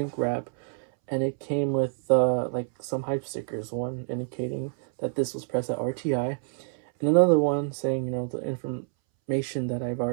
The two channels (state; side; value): silent; left; 60 dB below the other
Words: wrap, and it came with like some hype stickers. One indicating that this was pressed at RTI, and another one saying, you know, the information that I've